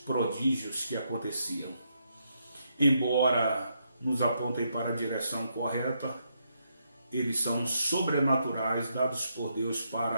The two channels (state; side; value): inverted; both; correlation -0.78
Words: prodígios que aconteciam. Embora nos apontem para a direção correta, eles são sobrenaturais, dados por Deus